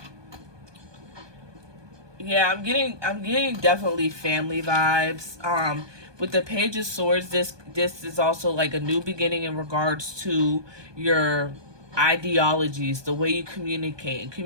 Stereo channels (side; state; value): left; late; 1.2 ms